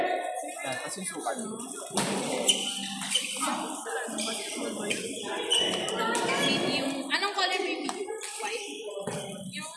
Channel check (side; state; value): both; identical; correlation 1.00